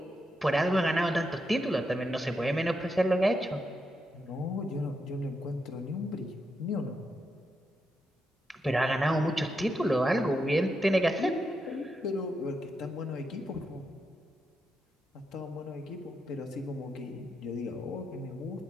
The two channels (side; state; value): both; normal; correlation 0.84